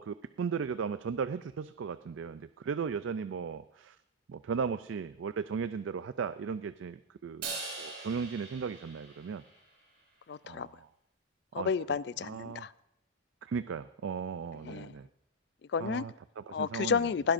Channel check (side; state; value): both; normal; correlation -0.04